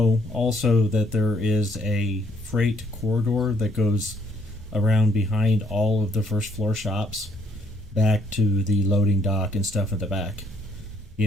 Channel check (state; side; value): normal; both; correlation 0.68